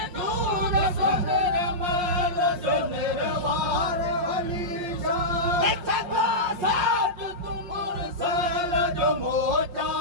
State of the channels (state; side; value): late; left; 5.6 ms